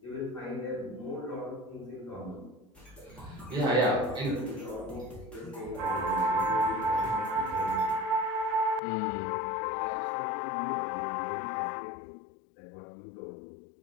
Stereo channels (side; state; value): right; drops out; at 8.8 s